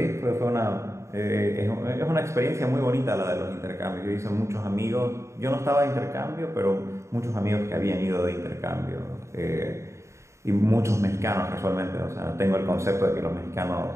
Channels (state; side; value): late; left; 0.14 ms